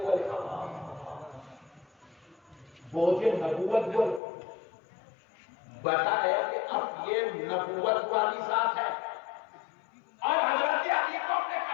بوجھے نبوت بول بتایا کہ اب یہ نبوت والی ذات ہے، اور حضرت علی کو اپنے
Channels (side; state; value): right; drops out; at 4.2 s